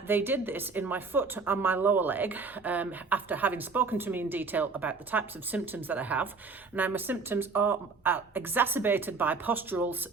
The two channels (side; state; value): left; quieter; 4.5 dB